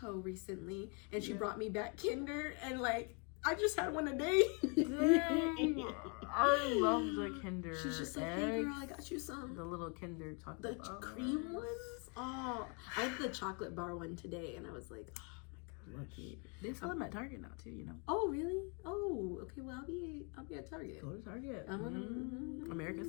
recently, and she brought me back Kinder, and like, I just had one a day. Dang. I love the Kinder. She's just like, hey girl, I got you some. The little Kinder chocolate The cream ones? Oh, I had the chocolate bar one today, and I was like, oh. Lucky. They sell them at Target now too, you know. Oh really? Oh, okay. Well, I'll be at Target. Go to Target. America's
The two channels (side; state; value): right; quieter; 35.8 dB